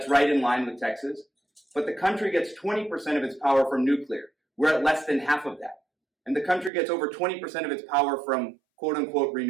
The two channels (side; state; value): left; drops out; at 6.7 s